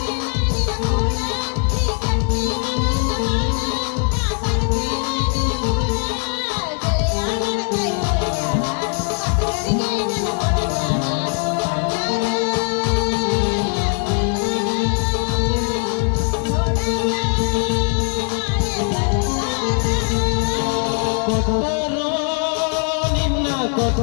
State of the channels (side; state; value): right; quieter; 39.9 dB